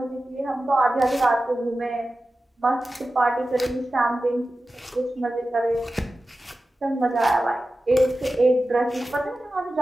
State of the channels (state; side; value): normal; both; correlation 0.94